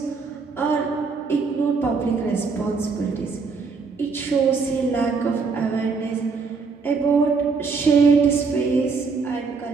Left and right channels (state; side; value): quieter; left; 4.8 dB